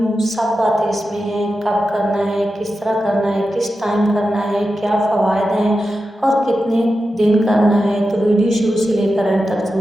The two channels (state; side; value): normal; both; correlation 0.91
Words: سب باتیں اس میں ہیں، کب کرنا ہے، کس طرح کرنا ہے، کس ٹائم کرنا ہے، کیا فوائد ہیں اور کتنے دن کرنا ہے۔ تو ویڈیو شروع سے لے کر اینڈ تک